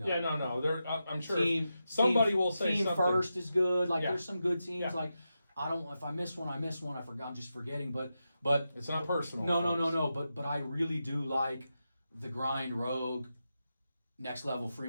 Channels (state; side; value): inverted; both; correlation -0.89